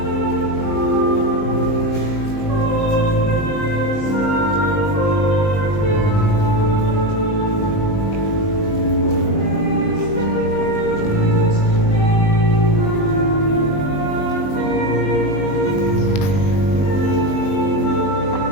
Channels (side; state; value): right; late; 19 ms